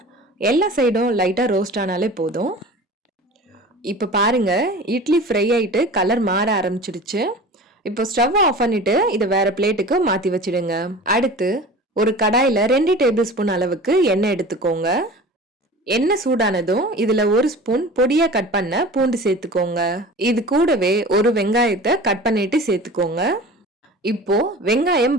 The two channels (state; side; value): normal; both; correlation 0.38